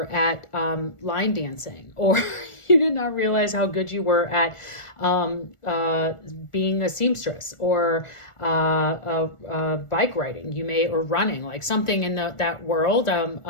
at line dancing, or you did not realize how good you were at being a seamstress, or bike riding, or running, like something in that world. I don't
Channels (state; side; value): late; right; 1.4 ms